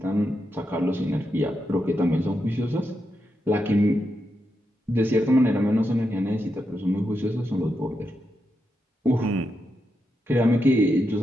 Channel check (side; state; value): both; normal; correlation 0.85